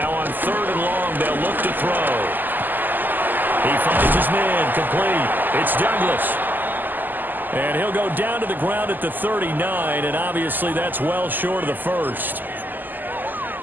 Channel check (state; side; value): late; left; 0.088 ms